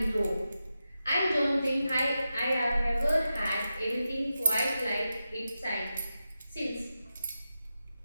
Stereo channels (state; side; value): inverted; both; correlation -0.90